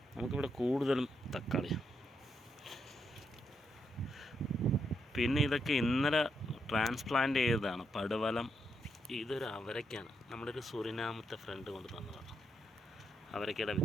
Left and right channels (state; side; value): normal; both; correlation 0.80